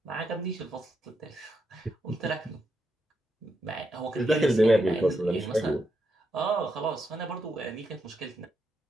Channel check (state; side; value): normal; both; correlation 0.82